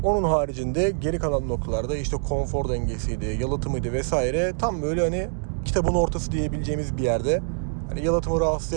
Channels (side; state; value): left; silent; digital silence